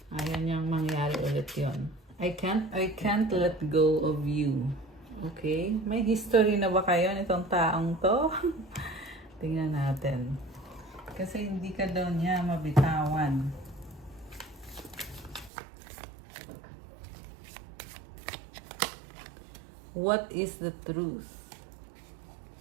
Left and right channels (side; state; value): left; drops out; at 15.5 s